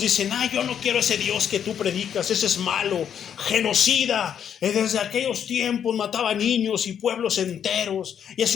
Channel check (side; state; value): right; quieter; 8.7 dB